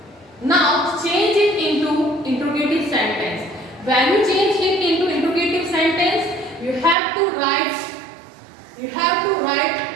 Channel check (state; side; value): drops out; left; at 7.0 s